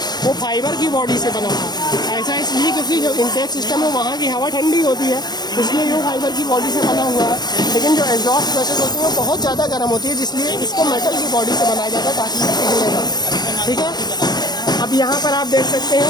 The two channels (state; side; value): late; right; 0.20 ms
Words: वो फाइबर की बॉडी से बना था। ऐसा इसलिए क्योंकि जो इनटेक सिस्टम है वहाँ की हवा ठंडी होती है, इसलिए वो फाइबर की बॉडी से बना हुआ है। लेकिन जो एग्जॉस्ट गैसेस होती है वो बहुत ज़्यादा गर्म होती है, जिसलिए इसको मेटल की बॉडी से बनाया जाता है ताकि ये पिघलेगा, ठीक है। अब यहाँ पर आप देख सकते